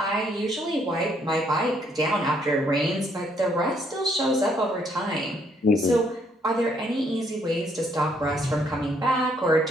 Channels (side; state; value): both; normal; correlation 0.69